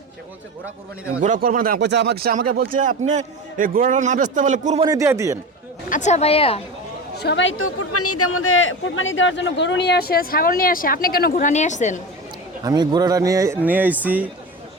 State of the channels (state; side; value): normal; both; correlation 0.26